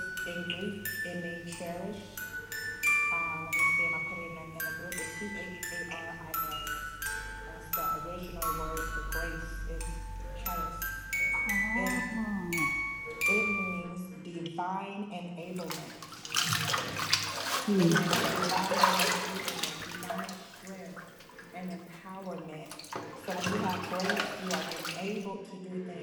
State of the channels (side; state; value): both; identical; correlation 1.00